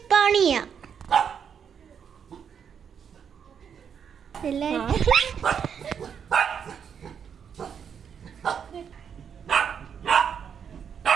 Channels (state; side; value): quieter; left; 7.5 dB